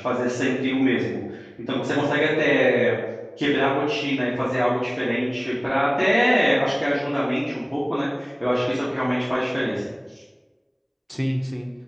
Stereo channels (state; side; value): identical; both; correlation 1.00